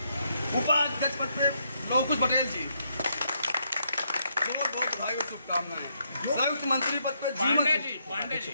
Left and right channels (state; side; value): inverted; both; correlation -0.76